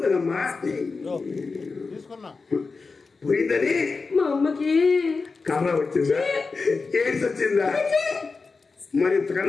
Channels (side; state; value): right; quieter; 4.3 dB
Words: కదమ్మా పోయిందని మా అమ్మకి కర్ర వచ్చిందా? ఏడ్స్ వచ్చిందా? మరి